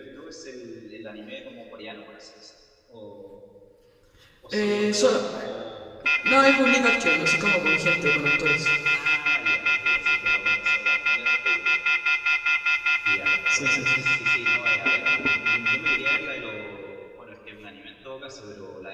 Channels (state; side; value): identical; both; correlation 1.00